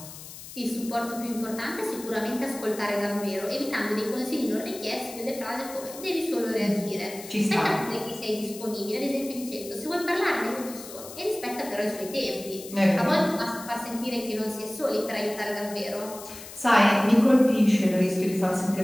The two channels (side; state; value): left; noise; hiss, 14 dB below the sound